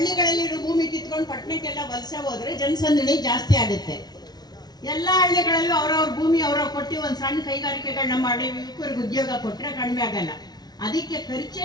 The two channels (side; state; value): right; late; 0.19 ms